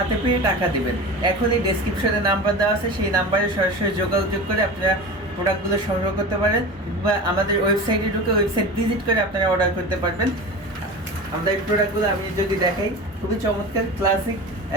পেয়ে টাকা দিবেন। এখনই ডেসক্রিপশনে নাম্বার দেওয়া আছে, সেই নাম্বারে সরাসরি যোগাযোগ করে আপনারা প্রোডাক্টগুলো সংগ্রহ করতে পারেন, বা আমাদের ওয়েবসাইটে ঢুকে ওয়েবসাইট ভিজিট করে আপনারা অর্ডার করতে পারবেন। আমাদের এই প্রোডাক্টগুলো আমি যদি দেখাই, খুবই চমৎকার ক্লাসিক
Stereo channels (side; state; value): both; normal; correlation 0.31